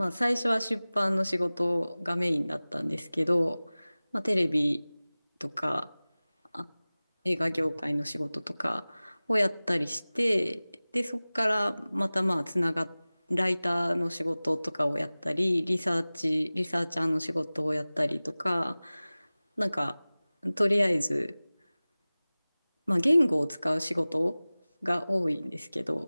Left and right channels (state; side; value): inverted; both; correlation -0.99